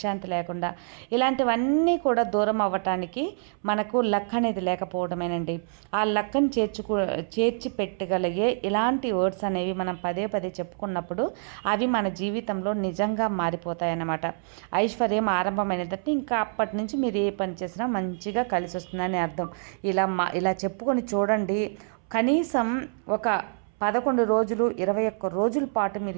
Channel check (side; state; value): left; silent; 60 dB below the other